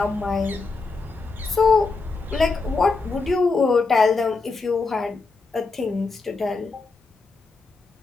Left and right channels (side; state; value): right; quieter; 4.0 dB